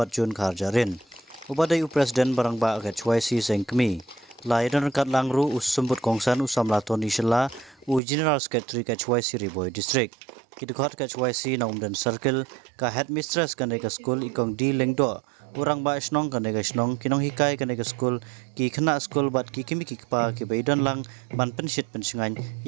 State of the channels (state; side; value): drops out; left; at 8.0 s